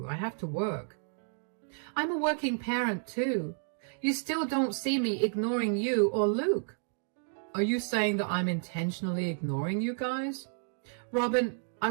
I have to work. I'm a working parent too. You still don't see me ignoring you or Luke. Are you saying that I'm intentionally ignoring you guys? Robin, I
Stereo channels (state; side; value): silent; left; 57 dB below the other